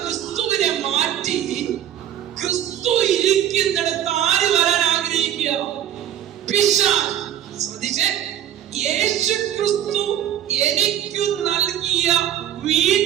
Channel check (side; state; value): left; quieter; 10.9 dB